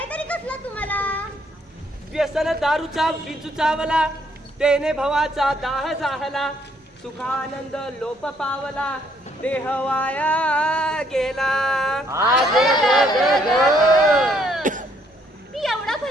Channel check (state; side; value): normal; both; correlation 0.68